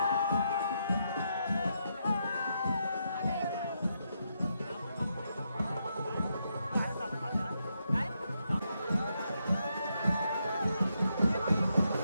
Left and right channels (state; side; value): inverted; both; correlation -0.80